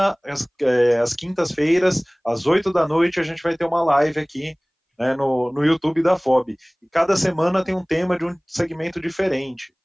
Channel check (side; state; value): both; identical; correlation 1.00